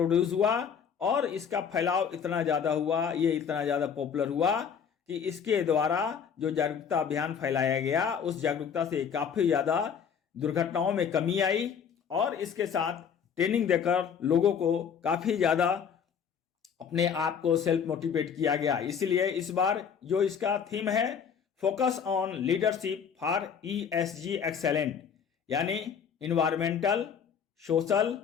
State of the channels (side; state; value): right; quieter; 7.2 dB